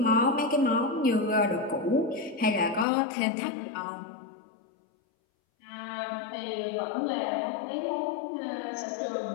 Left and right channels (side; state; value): right; drops out; at 2.9 s